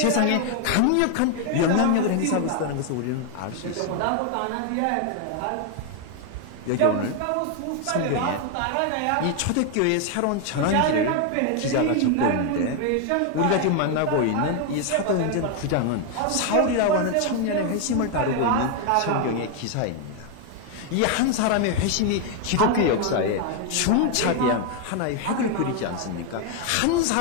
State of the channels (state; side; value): different; both; correlation 0.01